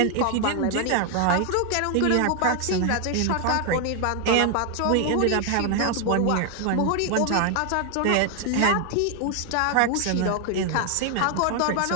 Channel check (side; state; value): both; different; correlation 0.00